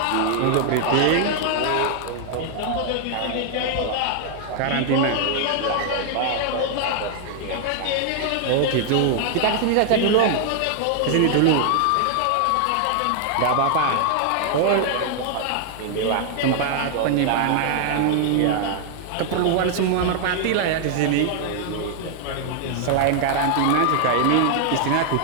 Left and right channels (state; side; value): different; both; correlation 0.00